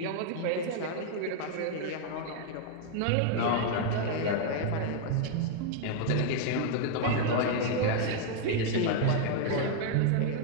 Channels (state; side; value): different; both; correlation 0.00